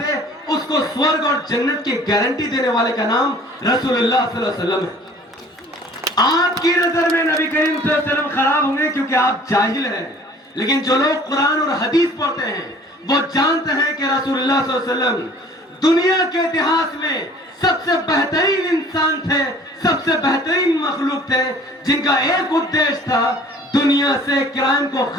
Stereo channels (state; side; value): normal; both; correlation 0.51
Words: उसको स्वर्ग और जन्नत की गारंटी देने वाले का नाम रसूलुल्लाह सल्लल्लाहु अलैहि वसल्लम है। आपकी नजर में नबी करीम सल्लल्लाहु अलैहि वसल्लम खराब होंगे क्योंकि आप जाहिल हैं, लेकिन जो लोग कुरान और हदीस पढ़ते हैं वो जानते हैं कि रसूलुल्लाह सल्लल्लाहु अलैहि वसल्लम दुनिया के इतिहास में सबसे बेहतरीन इंसान थे, सबसे बेहतरीन मखलूक थे, जिनका एक उद्देश्य था दुनिया से क्राइम को